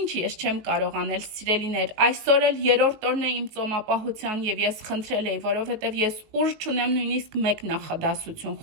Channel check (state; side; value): late; left; 19 ms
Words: ես չեմ կարող անել, սիրելիներ, այսօր էլ երրորդ օրն է իմ ծոմապահության եւ ես խնդրել էի, որովհետեւ ես ուժ չունեմ նույնիսկ մեկ նախադասություն